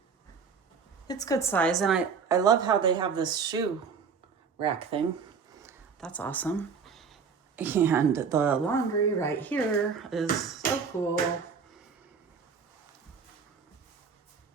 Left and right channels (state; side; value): quieter; left; 5.8 dB